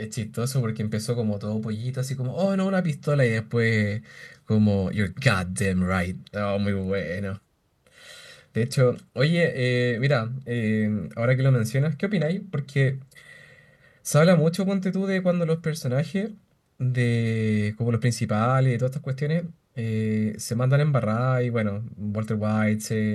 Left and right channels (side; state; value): both; identical; correlation 1.00